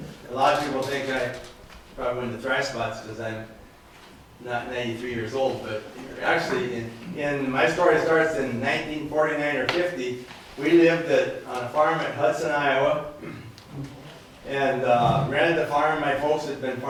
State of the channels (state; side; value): identical; both; correlation 1.00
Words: a lot of people think I probably went to thrash spots because I'm not 93 years old, but actually, in my story starts in 1949 or 50. We lived on a farm at Hudson, Iowa, and rented the farm. My folks had been